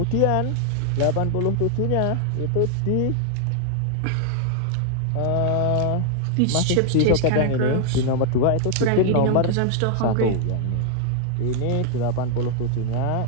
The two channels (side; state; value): both; different; correlation 0.00